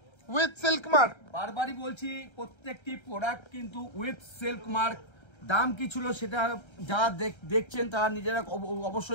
with silk mark. বারবারই বলছি প্রত্যেকটি প্রোডাক্ট কিন্তু উইথ সিল্ক মার্ক। দাম কি ছিল সেটা যারা দেখছেন তারা নিজেরা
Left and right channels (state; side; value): late; right; 1.3 ms